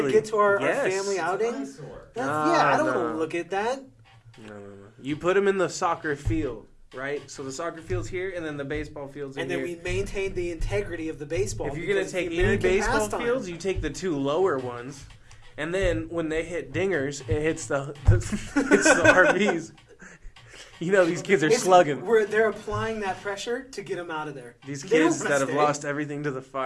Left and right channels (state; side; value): identical; both; correlation 1.00